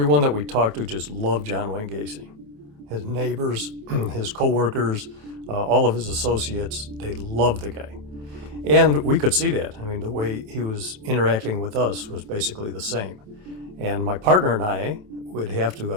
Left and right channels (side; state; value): left; late; 28 ms